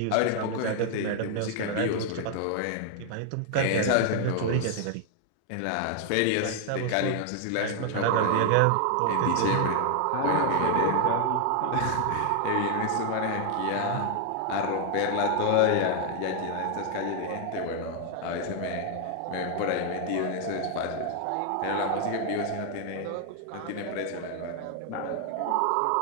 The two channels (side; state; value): both; different; correlation 0.00